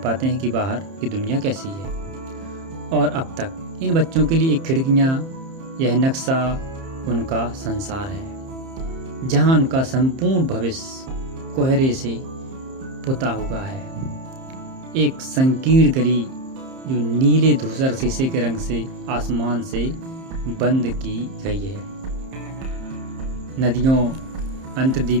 हैं कि बाहर की दुनिया कैसी है। और अब तक इन बच्चों के लिए एक खिड़कियाँ, यह नक्शा उनका संसार है जहाँ उनका संपूर्ण भविष्य कोहरे से पुता हुआ है। एक संकीर्ण गली जो नीले धूसर शीशे के रंग से आसमान से बंद की गई है। नदियों,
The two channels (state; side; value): late; left; 30 ms